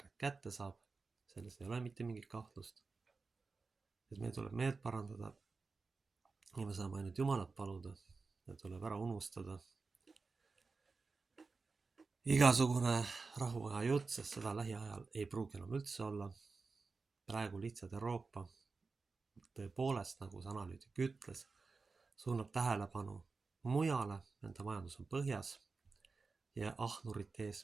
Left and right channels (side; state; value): left; quieter; 4.3 dB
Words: kätte saab. Selles ei ole mitte mingit kahtlust. Et meil tuleb meelt parandada ja me saame ainult Jumalat paluda ja tuleb ära unustada igasugune rahuaja jutt, sest seda lähiajal ei pruugi enam üldse olla. Praegu lihtsalt Euroopa tõepoolest, nagu see analüütik ütles, suunab tähelepanu mujale, nende majandus on põhjas ja ahnurite